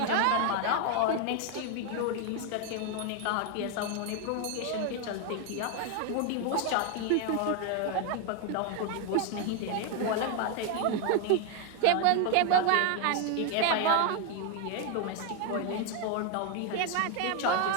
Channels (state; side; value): different; both; correlation 0.01